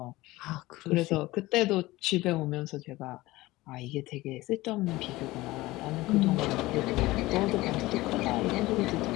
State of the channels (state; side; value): quieter; right; 19.1 dB